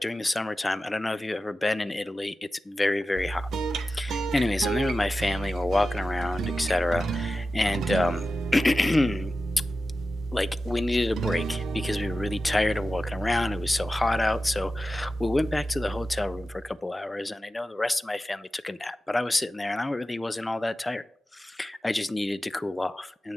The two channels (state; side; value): normal; both; correlation 0.93